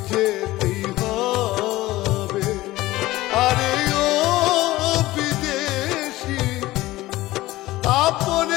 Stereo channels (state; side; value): quieter; right; 17.6 dB